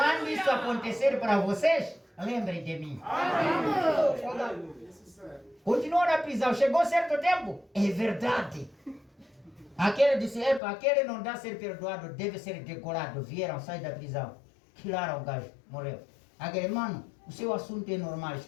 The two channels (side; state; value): right; drops out; at 10.6 s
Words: isso acontecer para vocês, lembrem de mim. Continuou na prisão, chegou certo tempo? É verdade. Aquele disse, epa, aquele não dá ser perdoado, deve ser decorado. Vieram, sai da prisão. Tiraram o gajo, morreu. Aquele, mano, o seu assunto é normal,